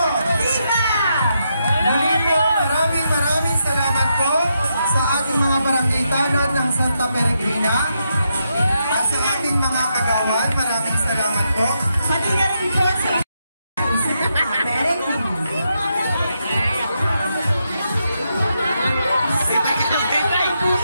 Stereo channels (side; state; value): both; inverted; correlation -0.82